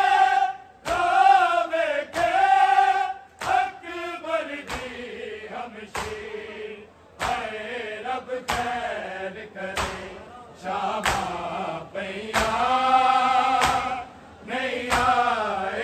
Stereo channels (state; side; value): identical; both; correlation 1.00